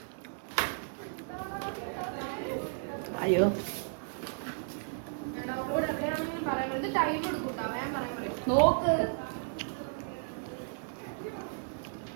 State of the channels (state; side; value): silent; left; 55 dB below the other